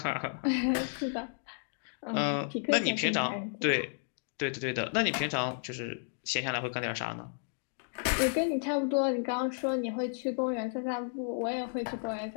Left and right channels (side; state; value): right; silent; digital silence